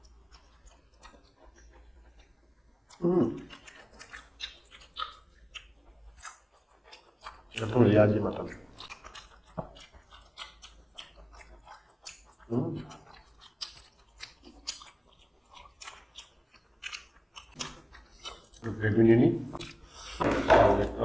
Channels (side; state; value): both; identical; correlation 1.00